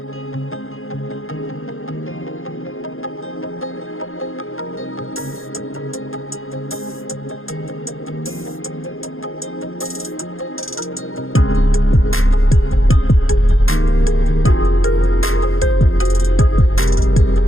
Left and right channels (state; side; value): late; right; 0.60 ms